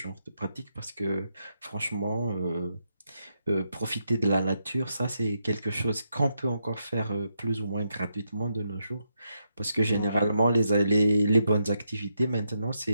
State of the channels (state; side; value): inverted; both; correlation -0.82